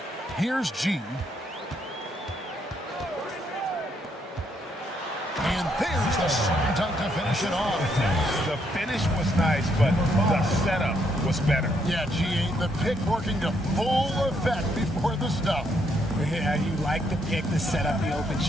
Here's G. And there's the slam dunk to finish it off. The finish was nice, but the setup was better. Yeah, G, the pick working to full effect before the stuff. Yeah, you like the pick to set up the open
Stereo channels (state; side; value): normal; both; correlation 0.74